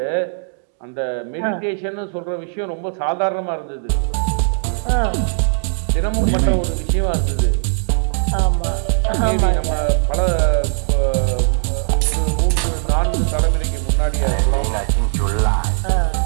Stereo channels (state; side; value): silent; left; digital silence